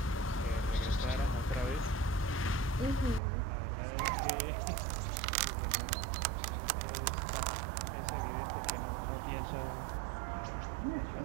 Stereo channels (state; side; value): drops out; left; at 3.2 s